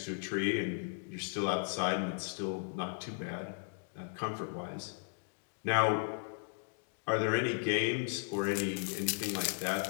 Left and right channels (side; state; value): right; silent; digital silence